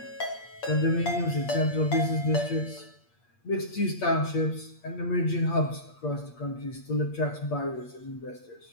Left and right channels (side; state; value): right; late; 8.5 ms